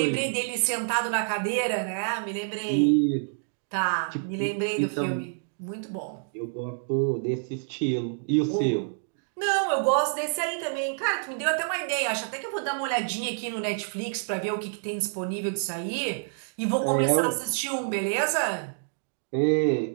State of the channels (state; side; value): silent; left; digital silence